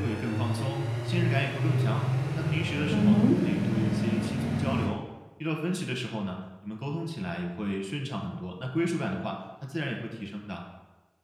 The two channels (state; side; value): identical; both; correlation 1.00